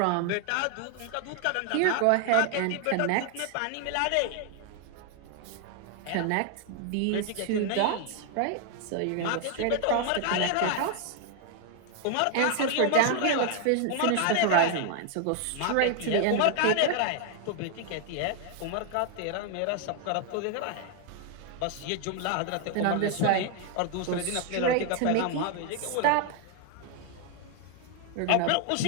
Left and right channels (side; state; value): both; different; correlation 0.00